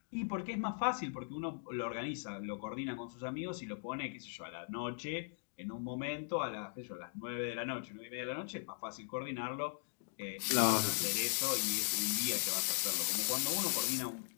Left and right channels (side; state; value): right; silent; digital silence